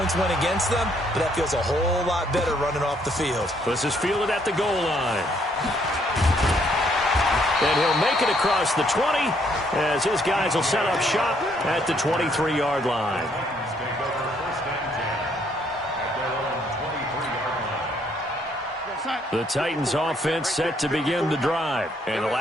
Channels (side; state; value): both; normal; correlation 0.69